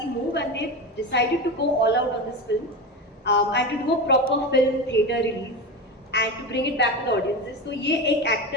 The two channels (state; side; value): normal; both; correlation 0.22